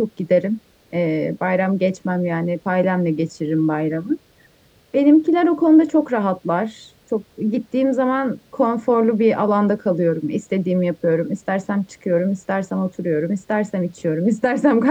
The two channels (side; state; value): both; identical; correlation 1.00